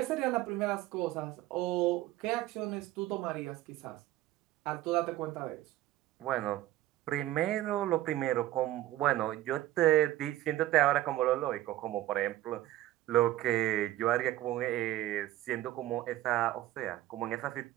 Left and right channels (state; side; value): quieter; left; 14.9 dB